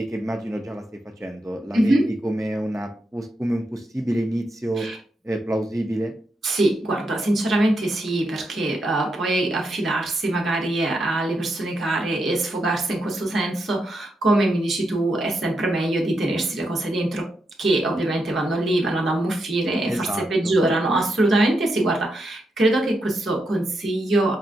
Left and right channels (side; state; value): both; normal; correlation 0.83